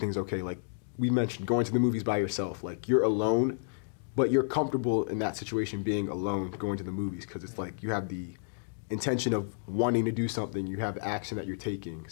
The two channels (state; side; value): silent; right; digital silence